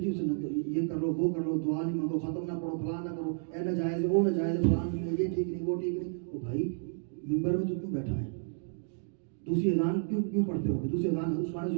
یہ کر لو، وہ کر لو، دعا نہیں مانگو، ختم نہ پڑھو، فلاں نہ کرو، اے ناجائز ہے، وہ ناجائز ہے، فلاں نہیں، یہ ٹھیک نہیں، وہ ٹھیک نہیں. وہ بھائی منبر میں تو کیوں بیٹھا ہے؟ دوسری اذان کیوں پڑھتے ہو؟ دوسری اذان عثمان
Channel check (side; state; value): left; silent; digital silence